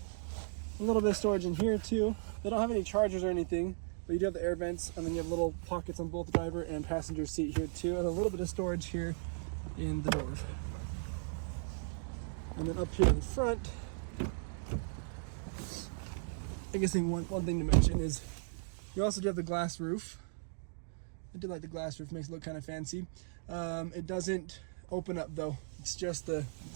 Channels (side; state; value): left; silent; digital silence